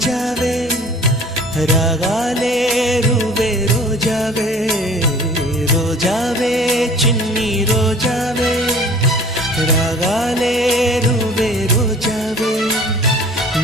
రాగాలే రువే రోజావే రోజావే చిన్ని రోజావే రాగాలే రువే రోజావే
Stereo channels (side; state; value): both; normal; correlation 0.48